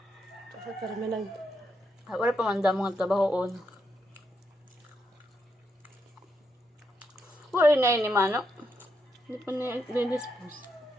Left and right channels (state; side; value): normal; both; correlation 0.81